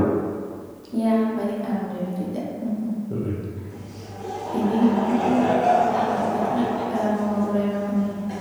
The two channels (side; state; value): both; identical; correlation 1.00